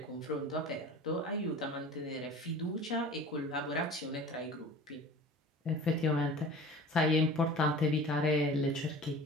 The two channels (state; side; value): normal; both; correlation 0.40